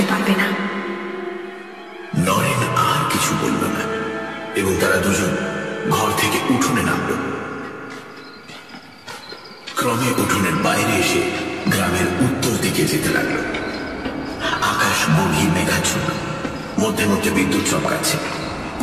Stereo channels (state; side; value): identical; both; correlation 1.00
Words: পারবে না। নরেন আর কিছু বলল না এবং তারা দুজন ঘর থেকে উঠোনে নামল। ক্রমে উঠোনের বাইরে এসে গ্রামের উত্তর দিকে যেতে লাগলো। আকাশ গভীর মেঘাচ্ছন্ন, মধ্যে মধ্যে বিদ্যুৎ চমকাচ্ছে।